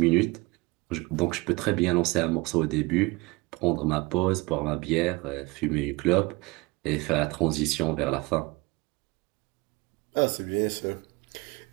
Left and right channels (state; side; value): quieter; left; 24.1 dB